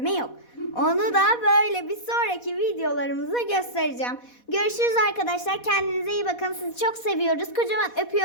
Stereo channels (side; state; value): right; late; 4.1 ms